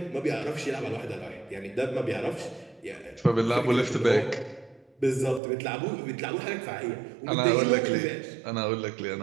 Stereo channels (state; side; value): drops out; left; at 5.4 s